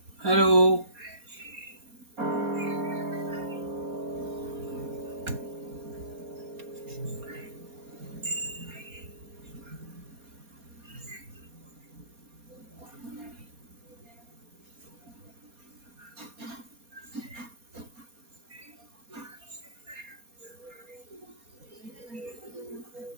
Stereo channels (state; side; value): late; left; 4.2 ms